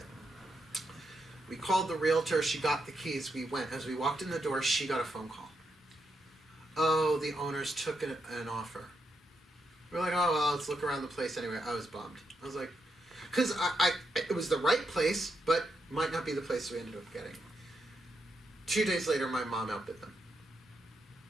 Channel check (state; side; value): normal; both; correlation 0.82